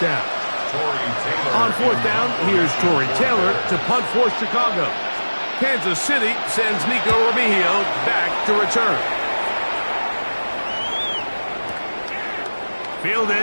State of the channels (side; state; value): both; inverted; correlation -1.00